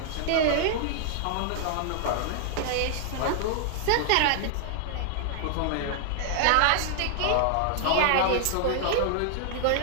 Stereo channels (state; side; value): different; both; correlation -0.01